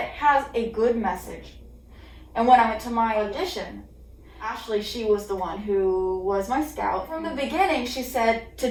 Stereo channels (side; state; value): both; identical; correlation 1.00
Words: has a good message. And when I went to my audition, Ashley, she was the one who was my scout. From the beginning, she said, to